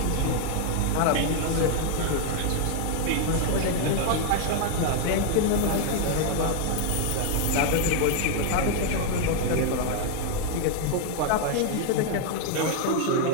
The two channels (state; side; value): different; both; correlation 0.00